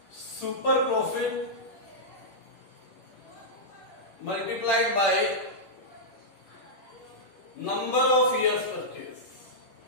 super profit multiplied by number of years purchase.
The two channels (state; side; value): late; right; 10 ms